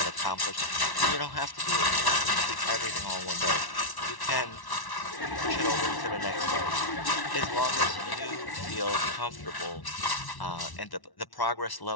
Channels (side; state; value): right; late; 1.1 ms